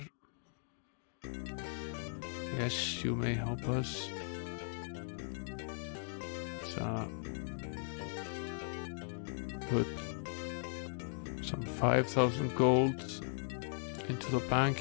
Yes, you may help us. Put some 5,000 gold into the bank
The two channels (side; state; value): right; silent; 52 dB below the other